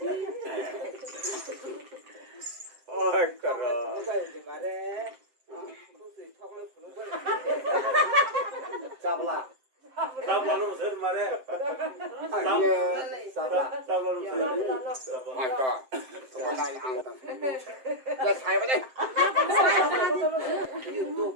Ôi caro. Sabla. Sabla nó sớm mà đấy. Sabla. Sabla nó sớm. My God. Hôm nay ăn tao. Let's have it.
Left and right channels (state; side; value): late; left; 7.7 ms